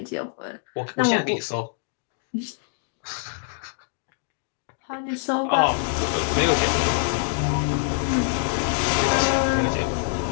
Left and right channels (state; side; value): silent; right; digital silence